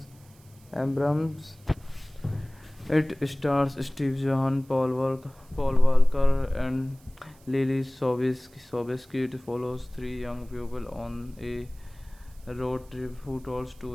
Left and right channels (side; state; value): right; noise; hiss, 28 dB below the sound